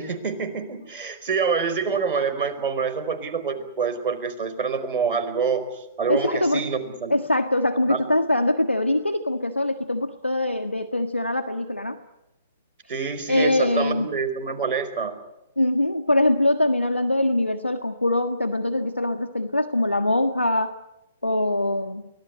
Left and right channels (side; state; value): both; inverted; correlation -0.63